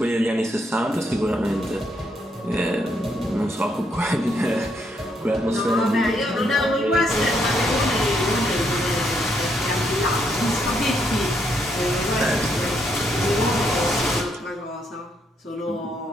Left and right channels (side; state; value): both; normal; correlation 0.75